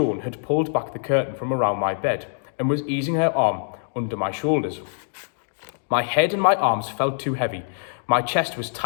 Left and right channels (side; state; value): right; silent; digital silence